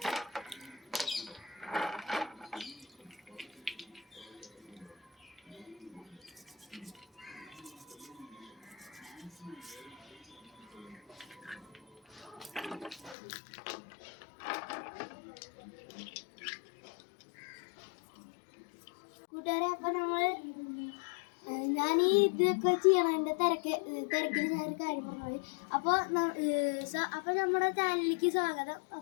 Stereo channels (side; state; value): right; drops out; at 13.2 s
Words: കൂട്ടുകാരെ. അപ്പൊ ഞാൻ ഈ ഇതൊക്കെ ചെയ്യണം. എൻ്റെ തിരക്കിൽ ഞാനൊരു കാര്യം പറഞ്ഞത്. അപ്പോൾ നമ്മുടെ ചാനലിലേക്ക് സ്വാഗതം.